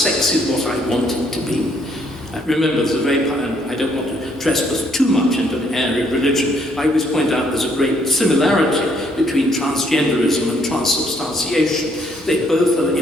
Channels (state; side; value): normal; both; correlation 0.68